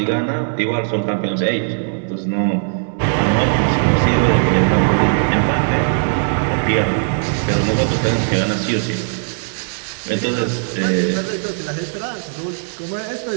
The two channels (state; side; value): silent; left; digital silence